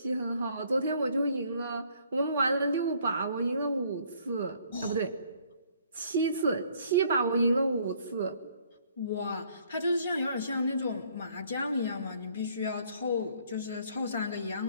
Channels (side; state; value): both; inverted; correlation -0.62